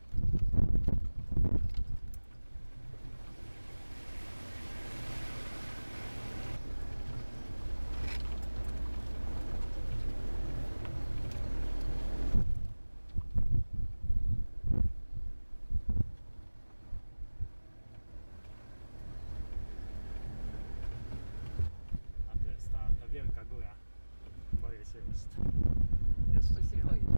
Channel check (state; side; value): inverted; both; correlation -1.00